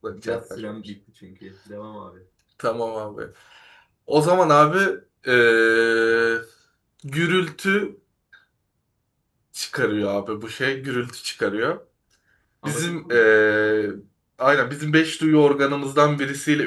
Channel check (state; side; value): identical; both; correlation 1.00